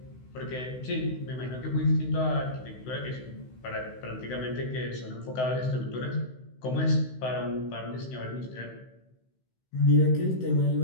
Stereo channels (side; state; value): right; late; 16 ms